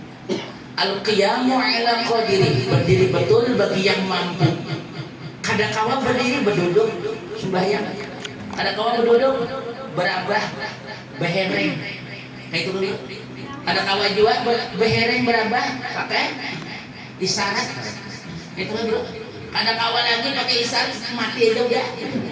Al-qiyamu ala qadiri, berdiri betul bagi yang mampu. Kadangkala berdiri berduduk sembahyang. Kadangkala berduduk berabah behereng. Kayak itu dulu. Kadangkala juga behereng berabah pakai isyarat. Itu dulu. Kadangkala lagi pakai isyarat mati aja udah.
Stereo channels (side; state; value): both; identical; correlation 1.00